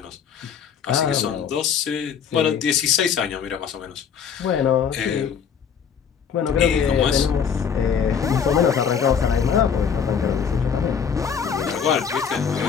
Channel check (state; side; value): quieter; right; 7.2 dB